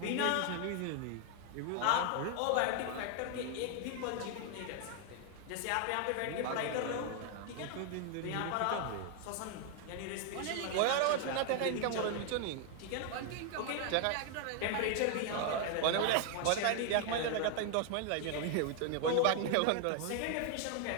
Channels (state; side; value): different; both; correlation 0.00